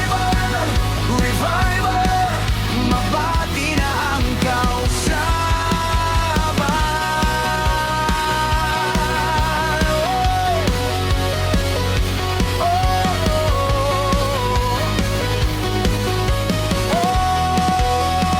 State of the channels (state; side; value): identical; both; correlation 1.00